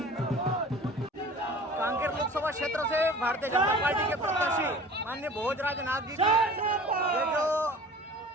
कांकेर लोकसभा क्षेत्र से भारतीय जनता पार्टी के प्रत्याशी माननीय भोजराज नाथ जी की ये जो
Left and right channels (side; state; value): both; normal; correlation 0.43